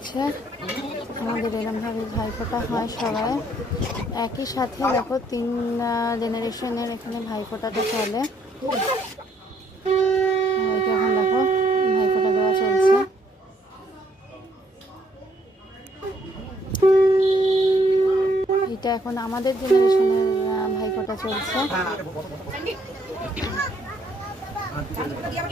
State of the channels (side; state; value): both; normal; correlation 0.68